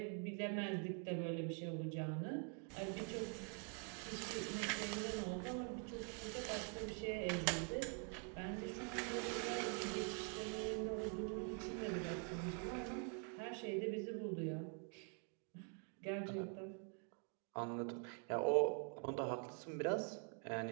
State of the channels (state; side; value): quieter; left; 40.0 dB